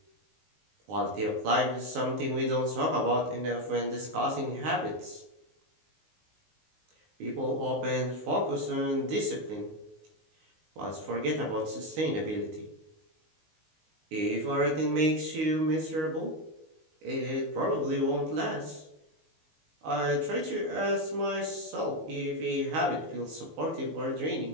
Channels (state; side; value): late; left; 19 ms